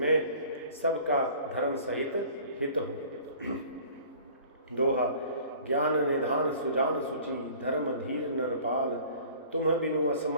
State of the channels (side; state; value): both; inverted; correlation -0.48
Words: सबका धर्म सहित हित हो। दोहा, ज्ञान निधान सुजान सुचि, धर्म धीर नरपाल। तुम बिनु